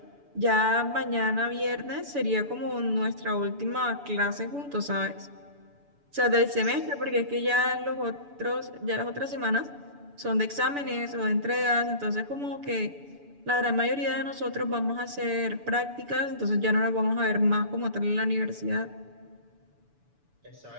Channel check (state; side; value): late; left; 6.9 ms